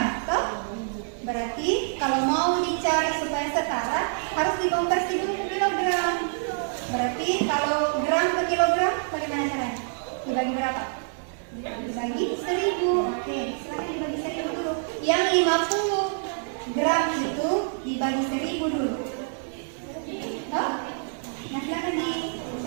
toh? Berarti kalau mau dicari supaya setara harus dikonversi dulu ke kilogram. Berarti kalau gram ke kilogram bagaimana caranya? Dibagi berapa? Dibagi 1000. Oke, silakan dibagi 1000 dulu. Yang 50 gram itu dibagi 1000 dulu. Toh? Nah, silakan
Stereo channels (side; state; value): left; silent; digital silence